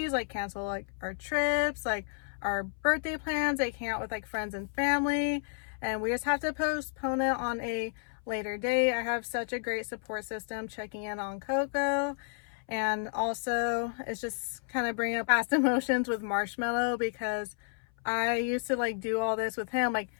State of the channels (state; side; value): silent; right; 57 dB below the other